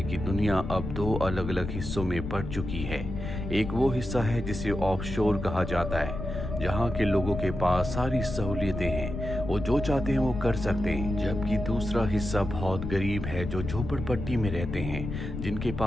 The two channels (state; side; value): noise; left; rumble, 6 dB below the sound